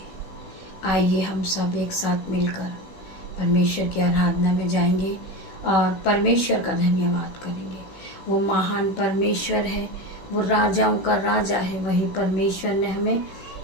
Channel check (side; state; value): right; late; 16 ms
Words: आइए हम सब एक साथ मिलकर परमेश्वर की आराधना में जाएंगे और परमेश्वर का धन्यवाद करेंगे। वो महान परमेश्वर है, वो राजाओं का राजा है। वही परमेश्वर ने हमें